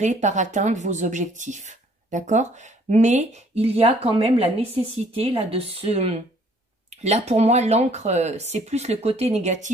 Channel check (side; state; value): both; normal; correlation 0.60